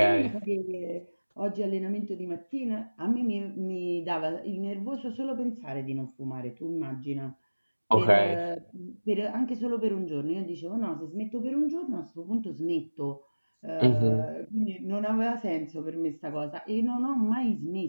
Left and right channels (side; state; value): both; inverted; correlation -1.00